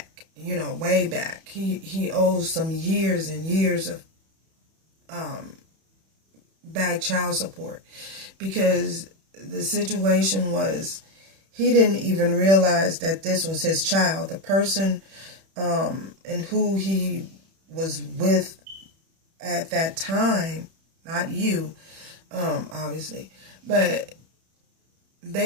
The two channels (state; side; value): late; left; 31 ms